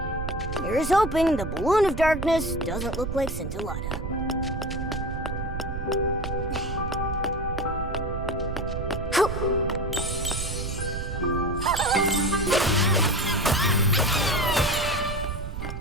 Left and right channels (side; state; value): right; noise; rumble, 5 dB below the sound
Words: Here's hoping the balloon of darkness doesn't look like Scintillata.